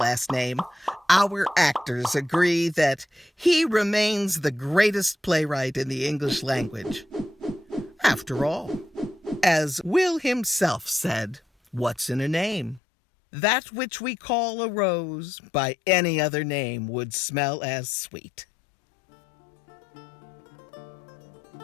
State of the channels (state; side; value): drops out; right; at 12.8 s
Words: name, our actors agree that he remains the greatest playwright in the English language. After all, as Will himself said, what's in a name? That which we call a rose by any other name would smell as sweet.